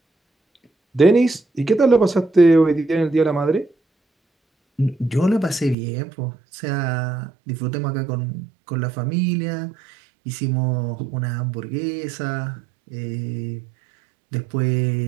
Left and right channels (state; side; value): drops out; left; at 5.8 s